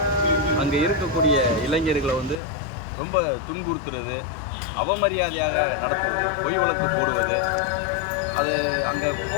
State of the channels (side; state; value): right; drops out; at 2.4 s